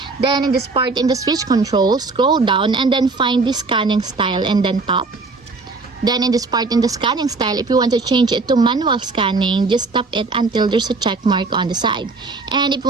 Then in this part in the switch control, scroll down and then find the scanning style and then tap. Then in this part in the scanning style, if you want to change it to manual scanning, just tap it until there's a check mark on the side. And if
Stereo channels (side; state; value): left; quieter; 3.8 dB